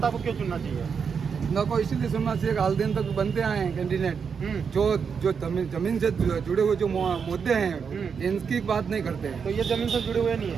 को क्यों चुनना चाहिए? न को इसीलिए सुनना चाहिए, हाल दिन तक बनते आए हैं कैंडिडेट जो जमीन से जुड़े हुए जो मुद्दे हैं इनकी बात नहीं करते हैं। तो ये जमीन से जुड़े हुए नहीं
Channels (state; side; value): quieter; left; 6.3 dB